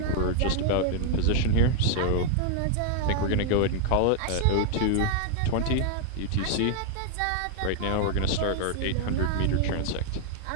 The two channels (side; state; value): both; different; correlation 0.00